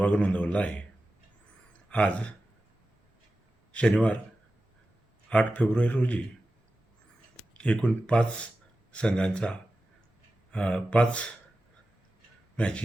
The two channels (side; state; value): both; normal; correlation 0.94